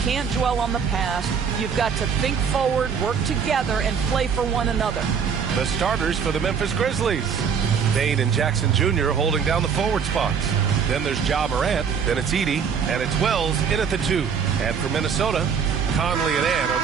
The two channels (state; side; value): quieter; left; 6.7 dB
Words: can't dwell on the past. You've got to think forward, work together, and play for one another. The starters for the Memphis Grizzlies. Dane and Jackson Jr. holding down the forward spots. Then there's Ja Morant, then it's Edey, and it's Wells in at the 2. And for Minnesota, Conley and Ant are